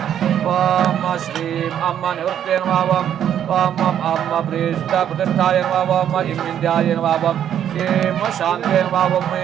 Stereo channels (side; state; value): left; quieter; 9.8 dB